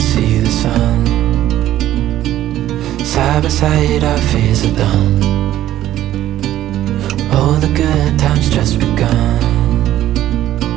the sun. Side by side our fears are done. Oh, the good times just begun.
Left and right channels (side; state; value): left; quieter; 13.1 dB